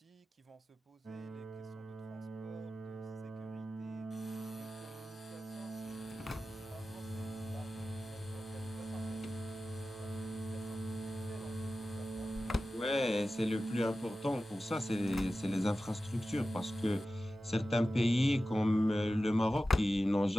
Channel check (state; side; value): normal; both; correlation 0.94